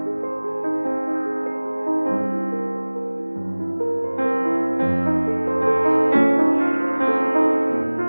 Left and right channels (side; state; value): both; inverted; correlation -1.00